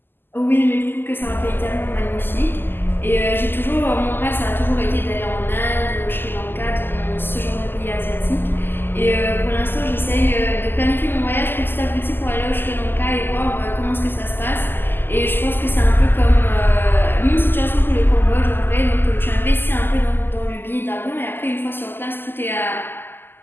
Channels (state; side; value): late; right; 0.097 ms